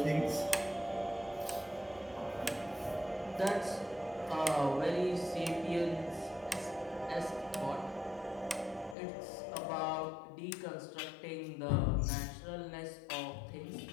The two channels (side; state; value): right; drops out; at 9.0 s